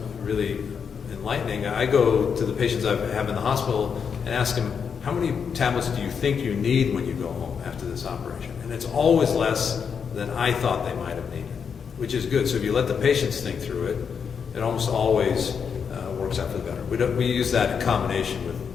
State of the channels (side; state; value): right; quieter; 6.6 dB